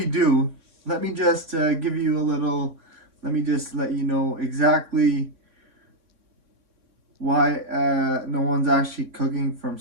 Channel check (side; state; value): left; late; 3.6 ms